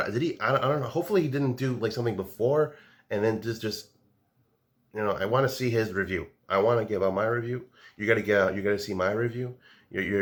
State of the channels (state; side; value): identical; both; correlation 1.00